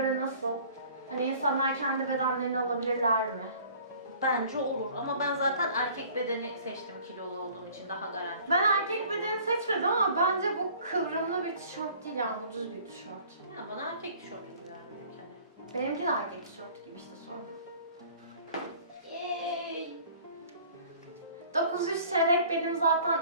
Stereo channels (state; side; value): inverted; both; correlation -0.50